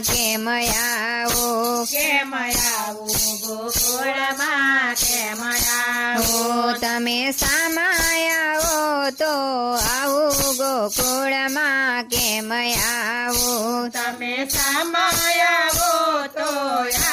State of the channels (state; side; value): identical; both; correlation 1.00